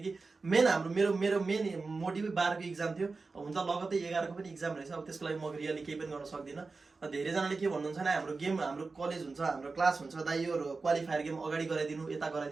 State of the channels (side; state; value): left; quieter; 4.0 dB